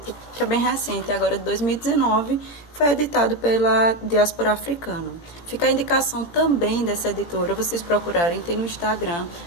que é bem recente, agora de 2019, foi editado pela Diáspora Africana. Fica a indicação também dessa editora, vocês procurarem, tem no Instagram,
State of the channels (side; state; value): right; late; 17 ms